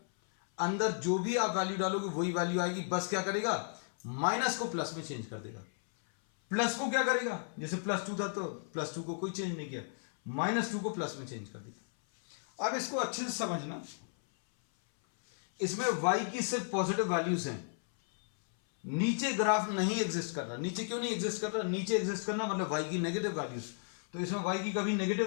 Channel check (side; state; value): right; silent; 55 dB below the other